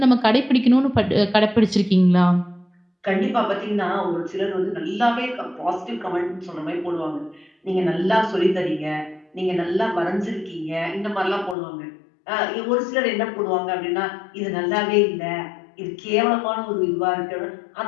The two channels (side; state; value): right; drops out; at 11.6 s